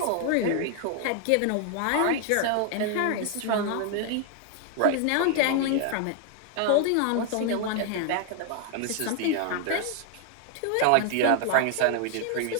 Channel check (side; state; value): both; different; correlation 0.00